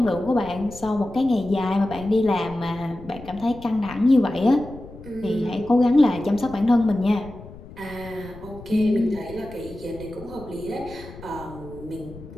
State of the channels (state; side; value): noise; left; rumble, 17 dB below the sound